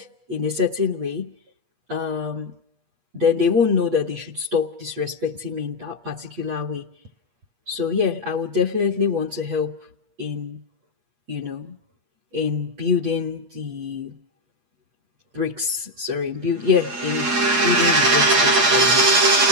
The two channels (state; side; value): late; left; 8.4 ms